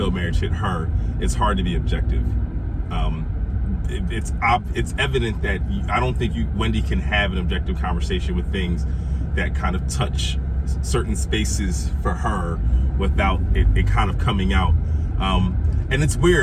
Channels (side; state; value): both; identical; correlation 1.00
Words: marriage hit her, it's hard to be objective. It's evident that I don't think Wendy can have an objective conversation with things that kind of touch certain spaces for her without it kind of coming out. And it's